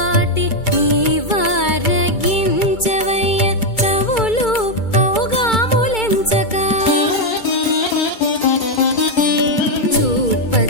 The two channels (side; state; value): right; late; 2.3 ms